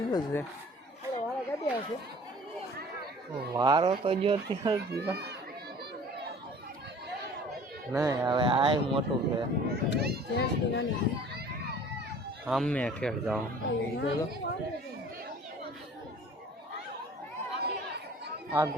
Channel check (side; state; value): both; normal; correlation 0.48